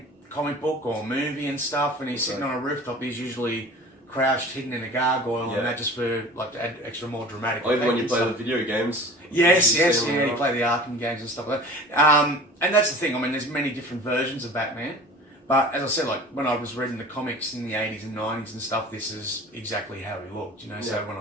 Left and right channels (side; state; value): both; normal; correlation 0.41